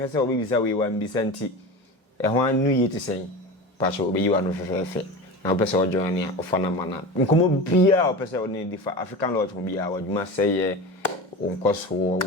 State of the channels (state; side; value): normal; both; correlation 0.29